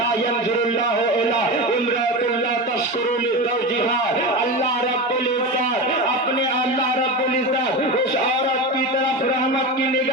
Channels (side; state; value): both; normal; correlation 0.23